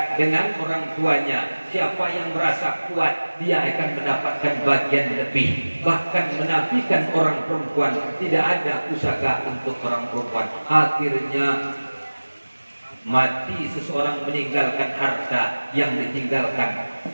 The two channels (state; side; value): inverted; both; correlation -1.00